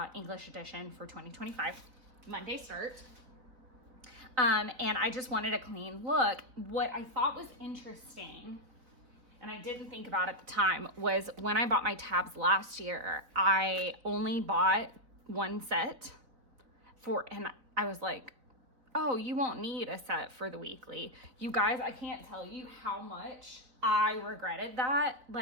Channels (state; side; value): late; left; 4.0 ms